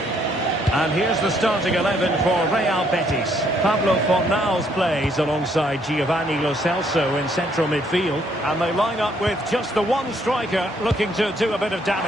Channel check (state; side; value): normal; both; correlation 0.69